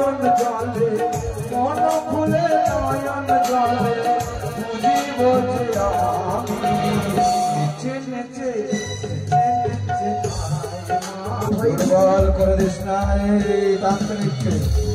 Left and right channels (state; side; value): identical; both; correlation 1.00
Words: নয়ন জলে মন খুলে নয়ন জলে বুঝিব যে আমি নেচে নেচে দুর্বল করে দিস না তান্ত্রিককে